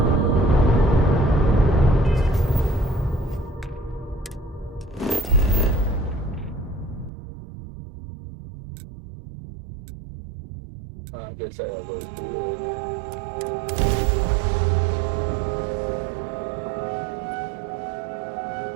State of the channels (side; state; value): left; drops out; at 7.1 s